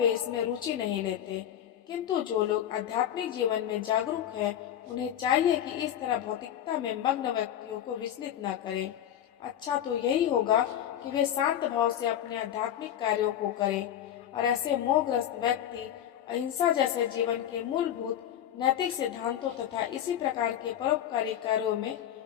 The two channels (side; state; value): right; quieter; 10.6 dB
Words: इसमें रुचि नहीं लेते। किंतु जो लोग आध्यात्मिक जीवन में जागरूक हैं, उन्हें चाहिए कि इस तरह भौतिकता में मग्न व्यक्तियों को विचलित न करें। अच्छा तो यही होगा कि वे शांत भाव से अपने आध्यात्मिक कार्यों को करें, और ऐसे मोहग्रस्त व्यक्ति अहिंसा जैसे जीवन के मूलभूत नैतिक सिद्धांतों तथा इसी प्रकार के परोपकारी कार्यों में